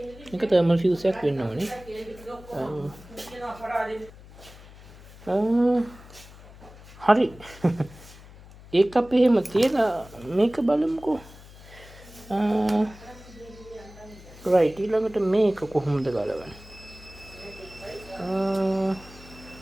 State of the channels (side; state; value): left; noise; hum, 20 dB below the sound